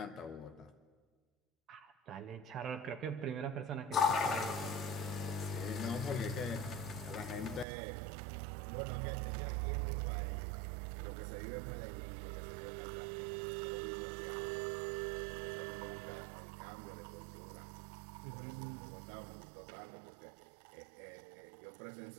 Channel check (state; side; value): drops out; left; at 7.7 s